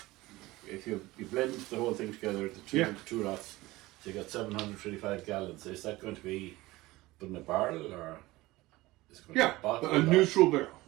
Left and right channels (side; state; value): left; quieter; 19.3 dB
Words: If you blend the whole thing together, the two Yeah. two lots, So you got 735 gallons. Is that going to be put in a barrel or is it going to be bottled? A neutral barrel.